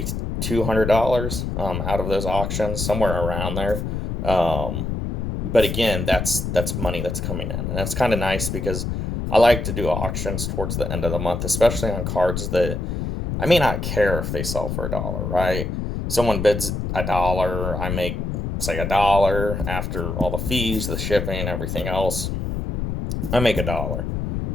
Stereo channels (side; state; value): left; noise; rumble, 3 dB below the sound